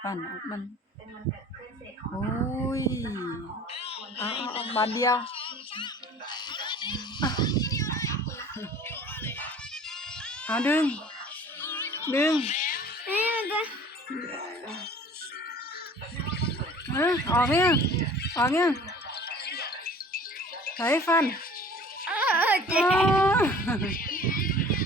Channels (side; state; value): both; normal; correlation 0.47